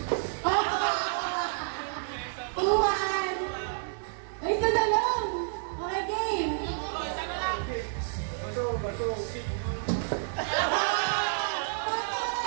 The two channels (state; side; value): silent; left; digital silence